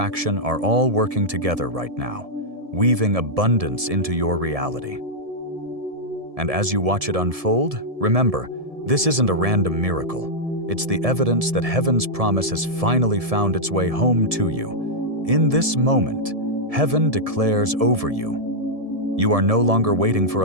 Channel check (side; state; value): left; late; 1.7 ms